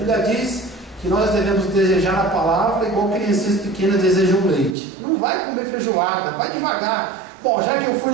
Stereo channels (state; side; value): drops out; left; at 4.8 s